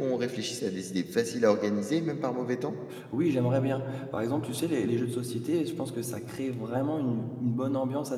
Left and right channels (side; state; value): both; identical; correlation 1.00